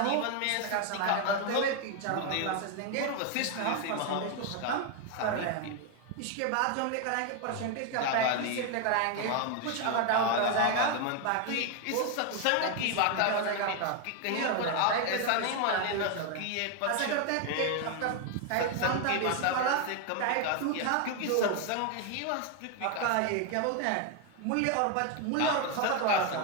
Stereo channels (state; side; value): different; both; correlation 0.01